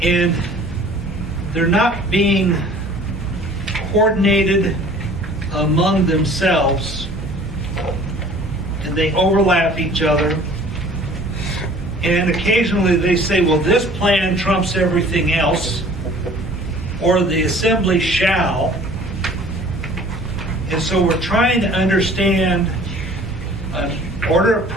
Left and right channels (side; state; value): both; normal; correlation 0.49